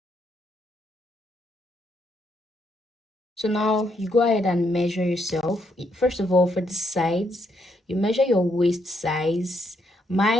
So now you go ahead and measure yourself. First of all, for the sides, you measure your waist size.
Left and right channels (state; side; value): normal; both; correlation 0.76